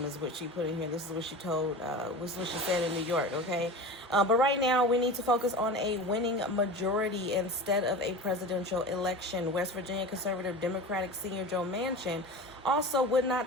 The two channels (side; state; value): both; normal; correlation 0.32